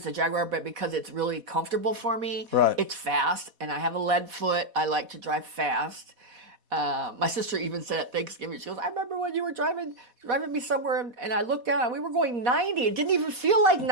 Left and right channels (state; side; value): late; left; 4.1 ms